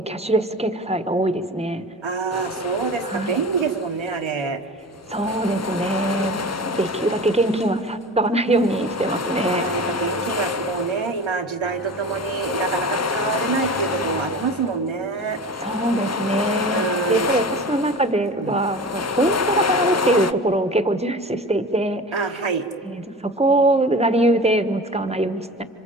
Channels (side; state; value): both; normal; correlation 0.34